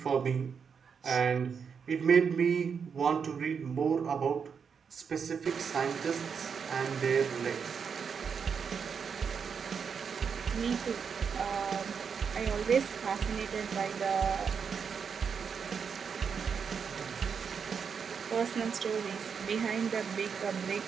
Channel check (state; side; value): quieter; left; 6.4 dB